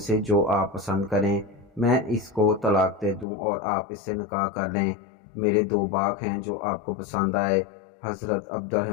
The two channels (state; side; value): drops out; right; at 3.2 s